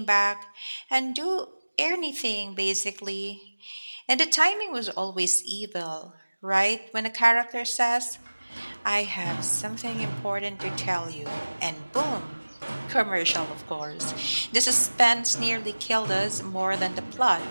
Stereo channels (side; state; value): both; inverted; correlation -1.00